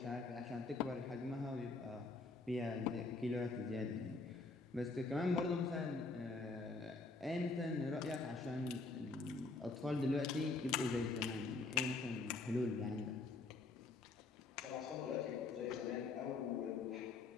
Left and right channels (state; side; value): quieter; right; 3.7 dB